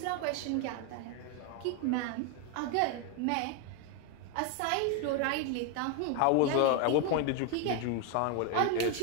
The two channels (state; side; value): different; both; correlation 0.01